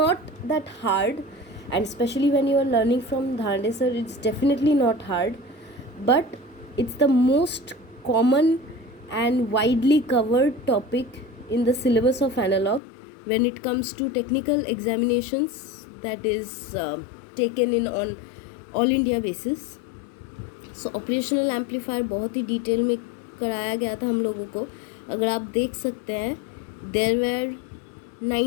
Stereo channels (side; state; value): right; drops out; at 12.8 s